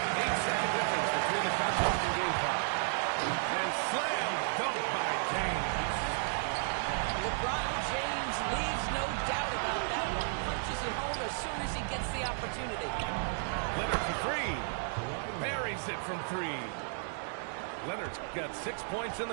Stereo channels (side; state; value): left; silent; 56 dB below the other